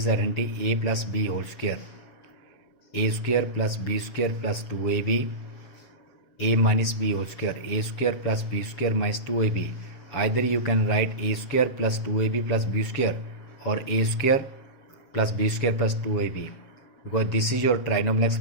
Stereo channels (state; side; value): late; right; 7.0 ms